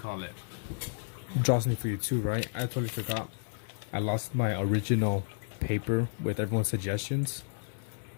it? Draw something for you too, right? I totally forgot. I lost my original paper with everyone's suggestions.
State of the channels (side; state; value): right; silent; digital silence